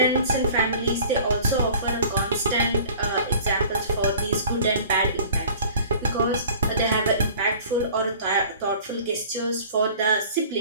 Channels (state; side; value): inverted; both; correlation -0.46